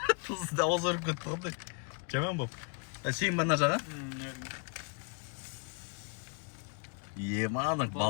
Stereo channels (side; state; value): right; quieter; 37.0 dB